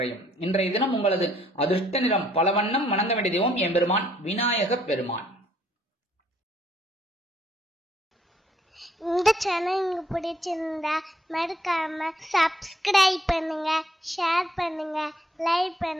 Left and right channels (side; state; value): both; normal; correlation 0.66